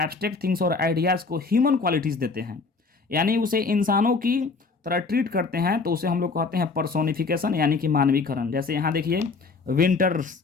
थिंग्स और आइडियाज़ को ह्यूमन क्वालिटीज़ देते हैं, यानी उसे इंसानों की तरह ट्रीट करते हैं, तो उसे हम लोग कहते हैं पर्सोनिफिकेशन, यानी कि मानवीकरण। जैसे यहाँ देखिए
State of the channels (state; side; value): quieter; right; 4.3 dB